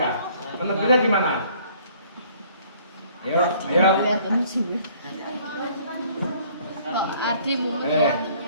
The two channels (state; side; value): inverted; both; correlation -0.58